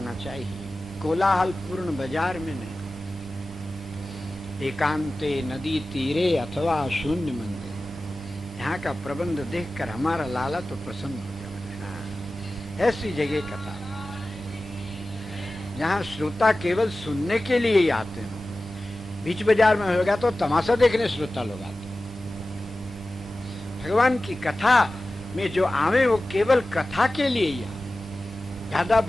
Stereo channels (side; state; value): both; normal; correlation 0.95